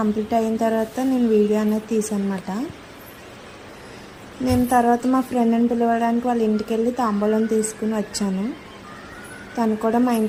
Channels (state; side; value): identical; both; correlation 1.00